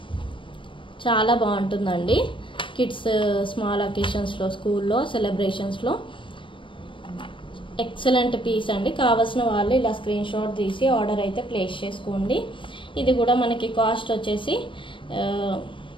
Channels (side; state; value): right; late; 0.25 ms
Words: చాలా బాగుంటుందండి. కిడ్స్ స్మాల్ అకేషన్స్లో స్కూల్లో సెలబ్రేషన్స్లో ఎక్సలెంట్ పీస్ అండి. కావాల్సిన వాళ్ళు ఇలా స్క్రీన్ షాట్ తీసి ఆర్డర్ అయితే ప్లేస్ చేసుకోండి. ఇది కూడా మనకి కాస్ట్ వచ్చేసి